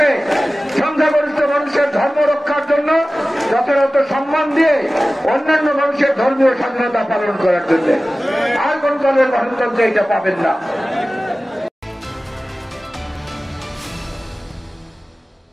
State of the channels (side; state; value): both; normal; correlation 0.96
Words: সংখ্যাগরিষ্ঠ মানুষের ধর্ম রক্ষার জন্য যথাযথ সম্মান দিয়ে অন্যান্য মানুষের ধর্মীয় স্বাধীনতা পালন করার জন্য। আর কোন দলের গণতন্ত্রে এটা পাবেন না।